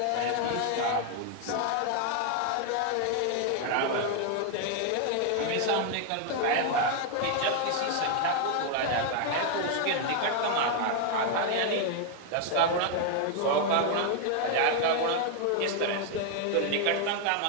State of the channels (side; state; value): both; different; correlation 0.00